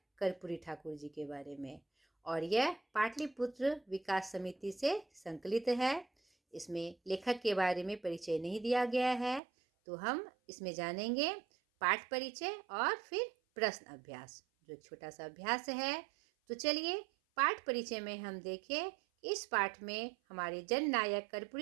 कर्पूरी ठाकुर जी के बारे में। और यह पाटलिपुत्र विकास समिति से संकलित है। इसमें लेखक के बारे में परिचय नहीं दिया गया है, तो हम इसमें जानेंगे पाठ परिचय और फिर प्रश्न अभ्यास, जो एक छोटा सा अभ्यास है। तो चलिए पाठ परिचय में हम देखें इस पाठ में हमारे जननायक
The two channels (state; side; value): drops out; left; at 9.4 s